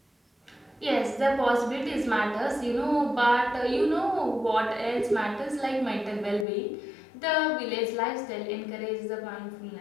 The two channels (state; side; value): drops out; right; at 6.5 s